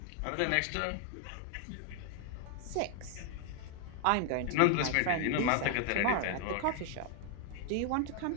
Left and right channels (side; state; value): both; different; correlation 0.00